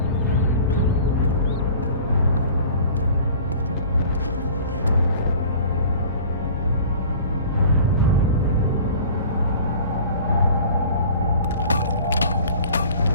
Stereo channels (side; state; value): both; inverted; correlation -0.45